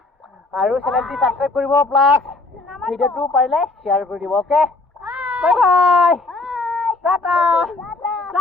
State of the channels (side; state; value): right; quieter; 3.3 dB